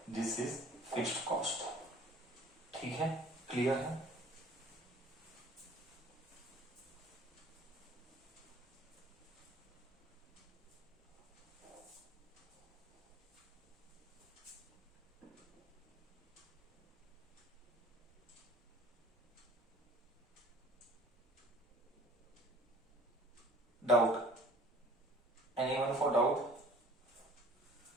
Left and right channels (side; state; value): both; normal; correlation 0.50